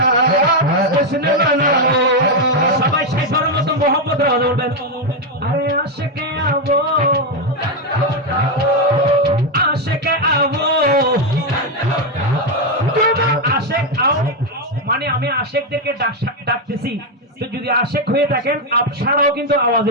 जश्न मनाओ। সবাই সেই ধর্মত মোহাম্মদ রাজ বলবেন আরে আশিকে আবো আশেকে আবো আশেক আও মানে আমি আশেকদেরকে ডাকতেছি। তো যদি আশেক হয়ে থাকেন আপনারাও কিন্তু আওয়াজে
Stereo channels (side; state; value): both; normal; correlation 0.04